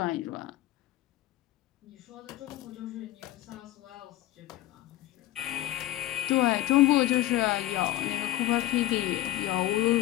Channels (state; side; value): quieter; right; 15.5 dB